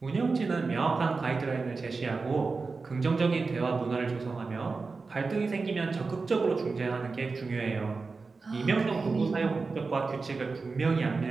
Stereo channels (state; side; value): quieter; left; 4.2 dB